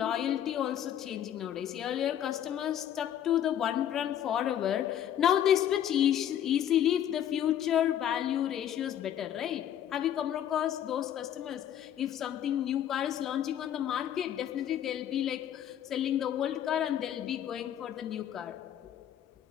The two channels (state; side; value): quieter; right; 10.5 dB